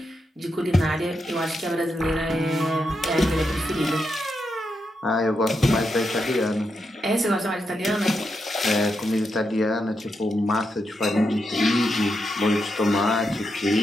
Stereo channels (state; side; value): normal; both; correlation 0.84